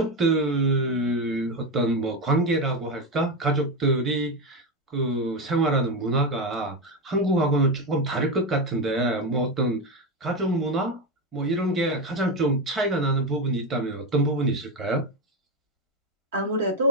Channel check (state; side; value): normal; both; correlation 0.14